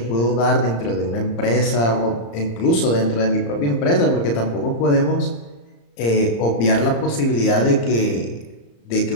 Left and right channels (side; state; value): right; late; 35 ms